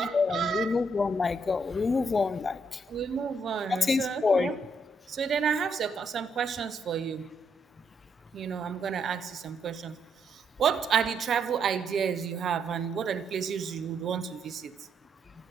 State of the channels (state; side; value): normal; both; correlation 0.76